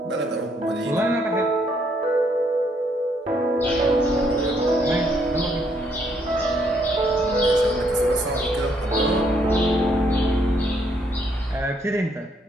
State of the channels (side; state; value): both; normal; correlation 0.71